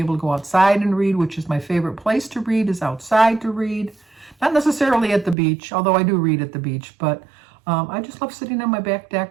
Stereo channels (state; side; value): drops out; left; at 5.4 s